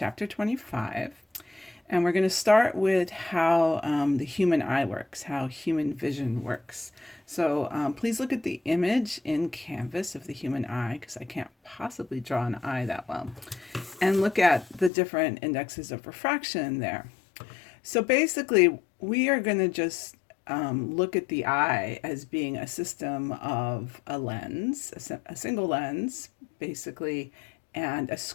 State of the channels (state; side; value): drops out; right; at 14.9 s